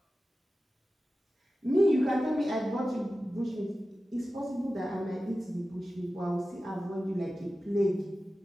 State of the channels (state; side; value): normal; both; correlation 0.94